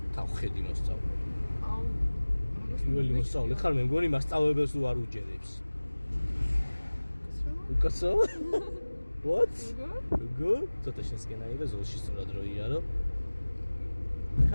თავხედი მოსწავლე. აუ, პირველი მოსწავლე ხარ, მე მგონი მასწავლებელს რო არ უჯერებს. უკაცო? What? Good? ცოტა შესკენაირა ზოლში სწორად რო იარო.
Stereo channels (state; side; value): inverted; both; correlation -1.00